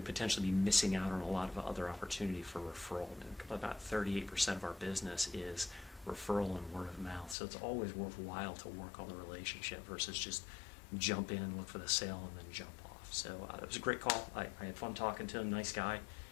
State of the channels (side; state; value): right; drops out; at 7.4 s